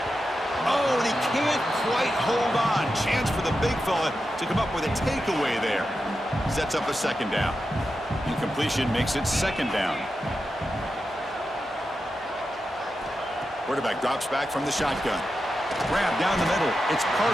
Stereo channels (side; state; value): both; normal; correlation 0.89